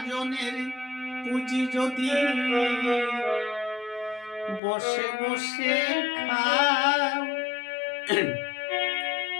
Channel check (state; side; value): drops out; right; at 4.6 s